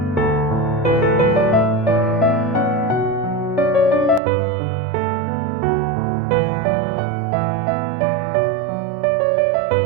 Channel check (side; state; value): left; drops out; at 4.2 s